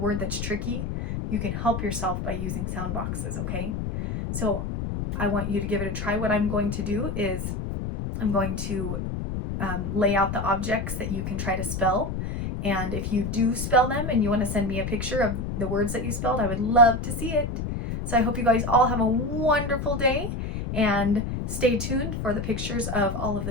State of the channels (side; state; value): left; noise; rumble, 4 dB below the sound